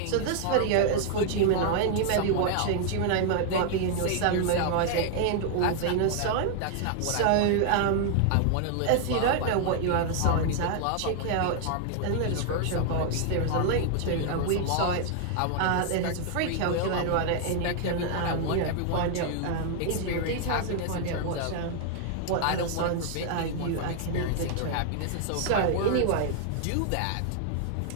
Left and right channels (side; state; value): both; different; correlation 0.00